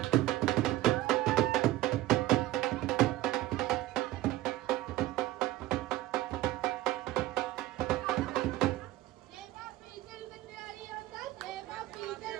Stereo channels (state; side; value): quieter; left; 16.2 dB